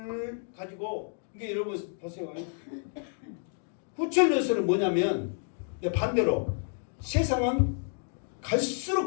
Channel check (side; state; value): right; silent; 58 dB below the other